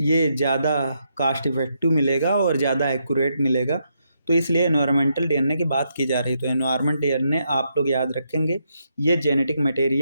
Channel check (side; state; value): both; inverted; correlation -0.79